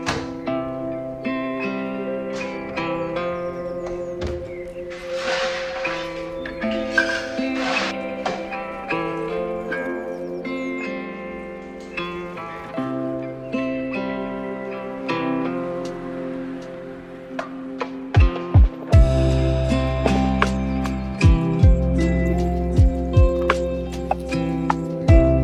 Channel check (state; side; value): identical; both; correlation 1.00